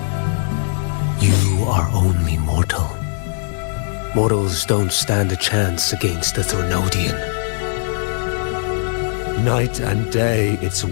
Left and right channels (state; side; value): silent; right; 58 dB below the other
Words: You are only mortal. Mortals don't stand a chance against the Threnodian. Night and day, its